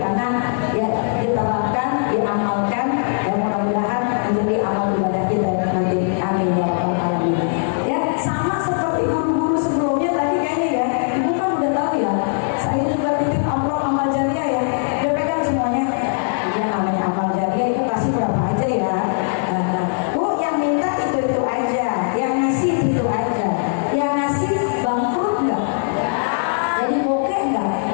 ya diterapkan, diamalkan, ya mudah-mudahan menjadi amal ibadah kita nanti. Amin ya rabbal alamin. Ya, sama seperti guru-guru sebelumnya tadi kayaknya ya, ibu kan udah tahu ya. Saya juga titip amplop amal jariah ya. Udah pegang semuanya. Iya, namanya amal jariah itu kasih berapa aja ya. Bu, yang minta itu aja, yang ngasih itu aja, yang ngasih bangkrut nggak? Jadi bokeh nggak?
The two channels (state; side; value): silent; right; digital silence